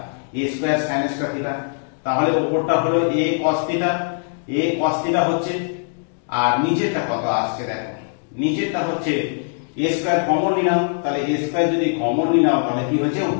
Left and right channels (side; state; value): right; silent; 65 dB below the other